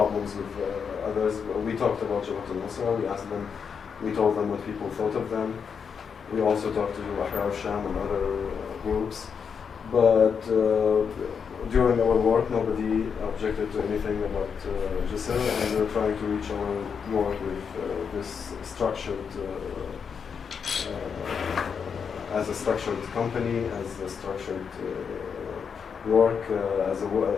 with others. We talked about Jabhat al-Nusra. We told them what people thought of them. We also talked to Ahrar al-Sham and other groups. But during our work, nobody objected to anything about Jisr, and we're trying to reach our work with this structured, as a structured company, as a structured work, as a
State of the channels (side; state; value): right; quieter; 6.5 dB